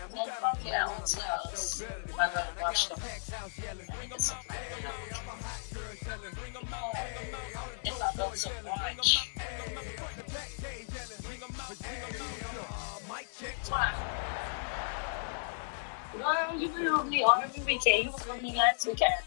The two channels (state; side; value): silent; right; 55 dB below the other